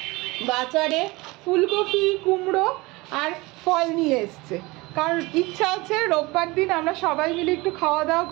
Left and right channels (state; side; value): quieter; left; 22.7 dB